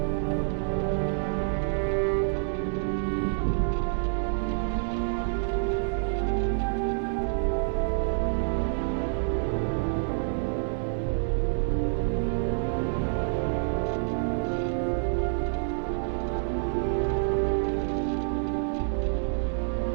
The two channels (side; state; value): left; silent; digital silence